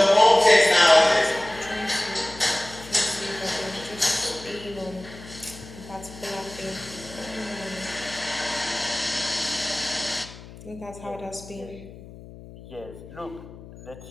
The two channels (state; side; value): noise; left; hum, 17 dB below the sound